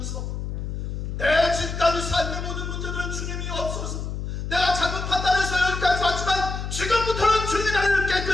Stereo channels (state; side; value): noise; left; hum, 5 dB below the sound